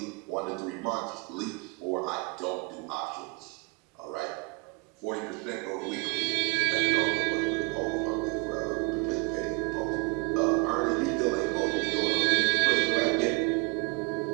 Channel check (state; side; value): quieter; left; 29.5 dB